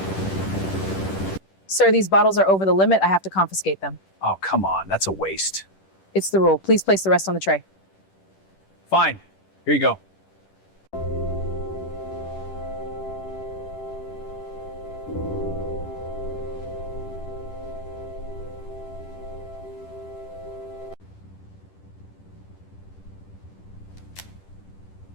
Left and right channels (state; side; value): late; right; 10 ms